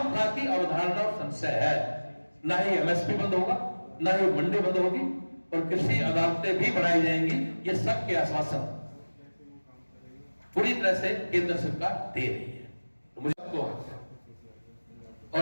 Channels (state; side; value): inverted; both; correlation -1.00